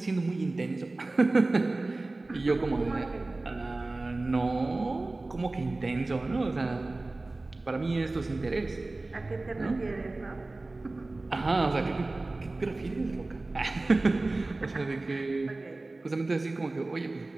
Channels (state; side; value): quieter; left; 3.1 dB